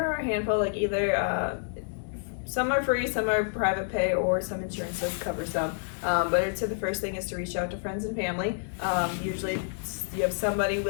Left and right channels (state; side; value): silent; right; digital silence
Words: are a handful, like either some are free, some are private pay, or some insurances cover some. But I'd say the first thing is to reach out to friends and family. Usually you have somebody